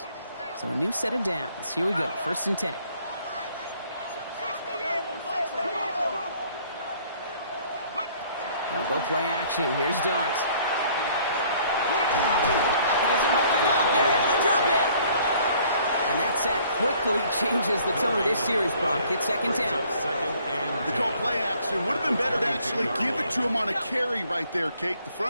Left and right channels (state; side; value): inverted; both; correlation -0.59